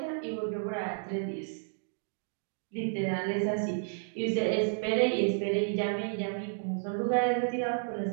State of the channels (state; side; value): silent; left; digital silence